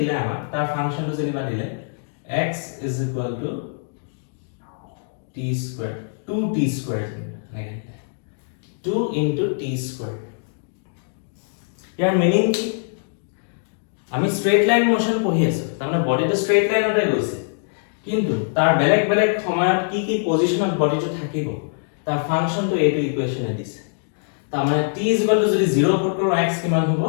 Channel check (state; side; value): silent; right; digital silence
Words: আমাক তাৰ ফাংশনটো যেনিবা দিলে x is equal to t square 2t square again 2 into t square year meaning কি আমি স্ট্ৰেইট লাইন মোশন পঢ়ি আছো তাৰমানে বডিটো স্ট্ৰেইট লাইনতে গৈছে কিন্তু তাৰ বেলেগ বেলেগ সময়ত কি কি পজিশনত বডিটো থাকিব তাৰ ফাংশনটো এইটো ইকুৱেচনে দিছে তাৰমানে t is equal to যদি 0 পুট কৰো x কিমান হ'ব